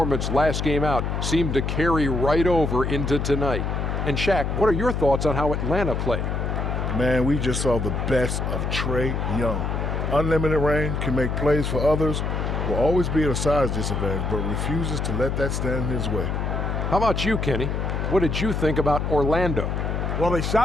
last game out seemed to carry right over into tonight. And Shaq, what are your thoughts on how Atlanta played? Man, we just saw the best of Trae Young. Unlimited range, can make plays for others, will always be at a size disadvantage, but refuses to let that stand in his way. How about you, Kenny? What did you think about Orlando? Well, they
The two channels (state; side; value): noise; left; hum, 1 dB below the sound